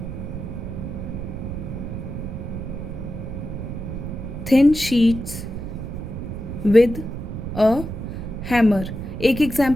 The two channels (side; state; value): right; noise; rumble, 6 dB below the sound